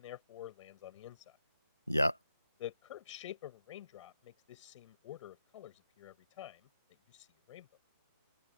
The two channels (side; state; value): both; inverted; correlation -0.87